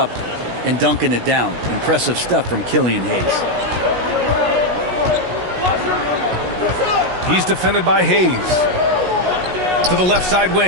and dunking it down? Impressive stuff from Killian Hayes. He's defended by Hayes. To the left side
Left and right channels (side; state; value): left; late; 16 ms